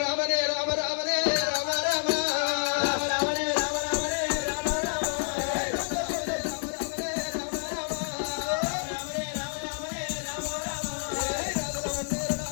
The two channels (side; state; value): right; silent; 59 dB below the other